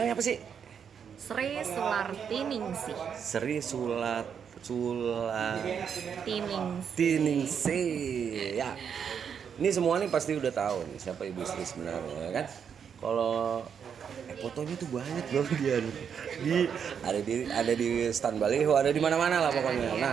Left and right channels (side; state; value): left; quieter; 7.4 dB